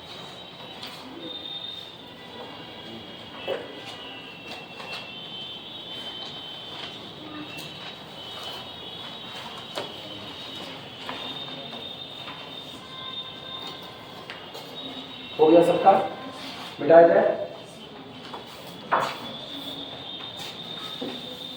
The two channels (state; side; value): identical; both; correlation 1.00